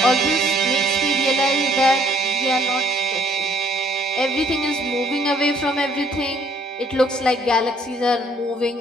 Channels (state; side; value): normal; both; correlation 0.63